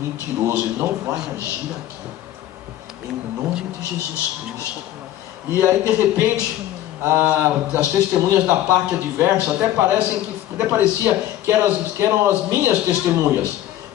ele não vai agir aqui, em nome de Jesus Cristo. E aí de repente as testemunhas da parte adversa até parecia que eram as minhas testemunhas,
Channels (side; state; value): right; quieter; 13.2 dB